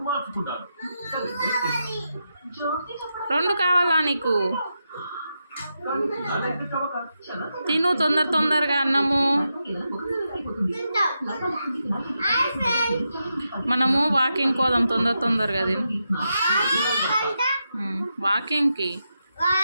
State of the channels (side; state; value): both; inverted; correlation -0.86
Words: రెండు కావాలా నీకు? తిను తొందరగా అన్నము. మనము వాకింగ్ పోదాం తొందరగా తిను. వాకింగ్కి